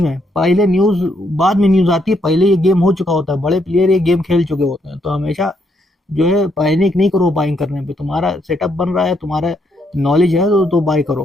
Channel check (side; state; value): both; normal; correlation 0.75